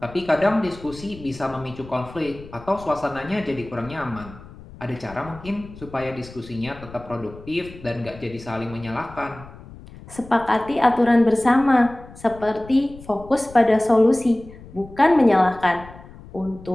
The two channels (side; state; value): left; noise; rumble, 18 dB below the sound